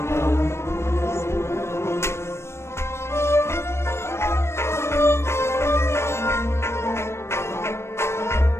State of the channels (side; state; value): right; late; 0.13 ms